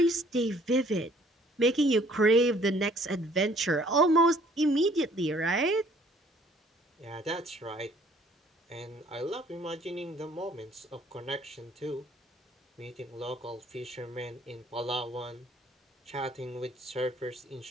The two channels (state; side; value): normal; both; correlation 0.58